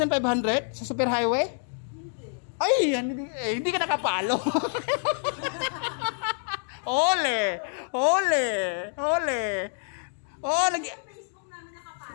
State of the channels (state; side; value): silent; right; 57 dB below the other